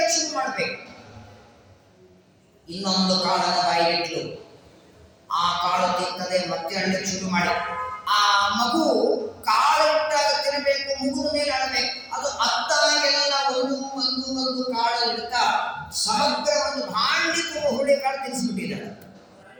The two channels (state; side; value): identical; both; correlation 1.00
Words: ಶುರು ಮಾಡ್ಬೇಕು. ಇನ್ನೊಂದು ಕಾಳನ್ನು ಬಾಯಿಗಿಟ್ಲು. ಆ ಕಾಳು ತಿಂತದೆ, ಮತ್ತೆ ಅಳಕ್ಕೆ ಶುರು ಮಾಡಿ. ಆ ಮಗು ಕಾಳು ಇಟ್ಟಾಗ ತಿನ್ನಬೇಕು, ಮುಗಿದ ಮೇಲೆ ಅಳಬೇಕು. ಅದು ಅತ್ತಾಗೆಲ್ಲ ಒಂದು ಕಾಳು ಇಡ್ತಾ ಸಮಗ್ರ ಒಂದು ಭಾಂಡಿ ತುಂಬ ಹುಳಿ ಕಾಳು ತಿನ್ನಿಸ್ಬಿಟ್ಟಿದ್ದಾಳೆ.